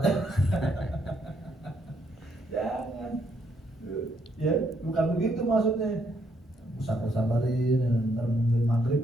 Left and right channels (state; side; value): normal; both; correlation 0.73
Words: Jangan. Ya, bukan begitu maksudnya. Sabarin, ntar nungguin